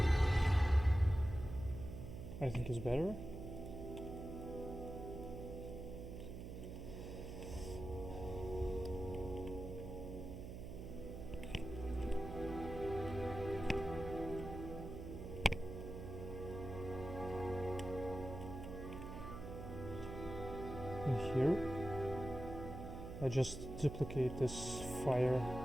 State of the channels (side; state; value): right; noise; hum, 8 dB below the sound